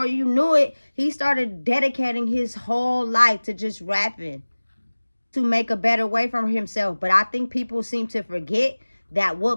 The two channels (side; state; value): both; inverted; correlation -1.00